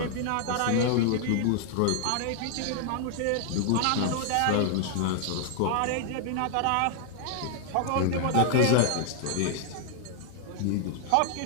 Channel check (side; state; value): both; different; correlation 0.00